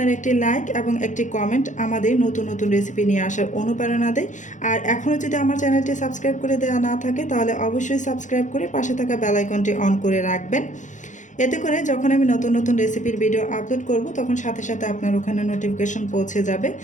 একটি লাইক এবং একটি কমেন্ট আমাদের নতুন নতুন রেসিপি নিয়ে আসার অনুপ্রেরণা দেয়। আর এখনও যদি আমার চ্যানেলটি সাবস্ক্রাইব করে দেওয়া না থাকে তাহলে অবশ্যই সাবস্ক্রাইব করে পাশে থাকা বেল আইকনটি অন করে রাখবেন। এতে করে যখন আমি নতুন নতুন রেসিপির ভিডিও আপলোড করব তখন সাথে সাথে আপনার ওখানে নোটিফিকেশন পৌঁছে যাবে।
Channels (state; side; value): late; right; 0.36 ms